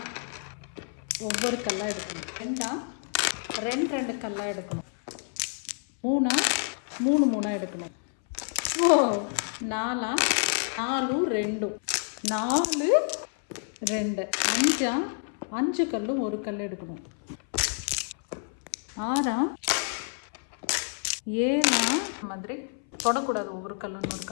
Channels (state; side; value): silent; right; 59 dB below the other